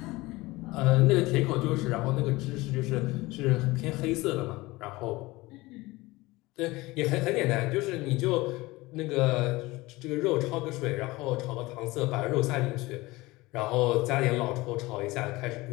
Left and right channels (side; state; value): right; quieter; 20.8 dB